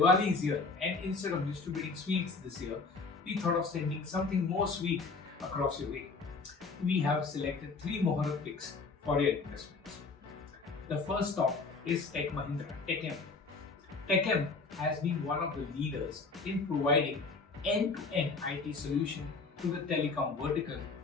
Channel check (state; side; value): quieter; right; 4.2 dB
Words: is here, and instead of distributing sweets this year, we thought of sending something more sweet across your way. We have selected 3 Muhurat Picks for your investments. The first stock is techmahindra, Techm. Techm has been one of the leaders in providing end-to-end IT solution to the telecom vertical